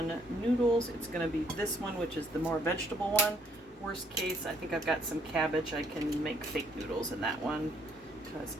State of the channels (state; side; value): normal; both; correlation 0.66